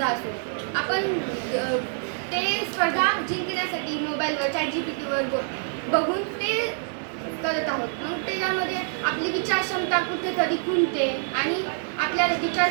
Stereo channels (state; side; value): silent; left; digital silence